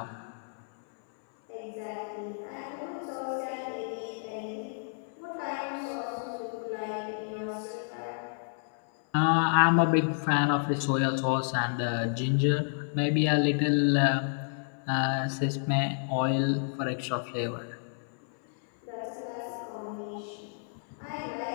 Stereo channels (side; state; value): right; silent; 58 dB below the other